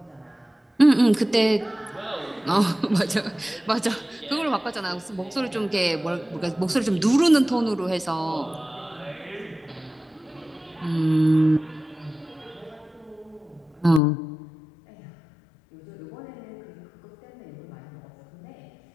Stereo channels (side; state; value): right; drops out; at 14.0 s